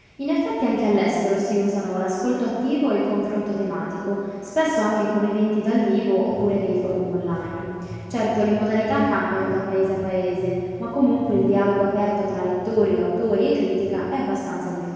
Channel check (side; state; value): both; identical; correlation 1.00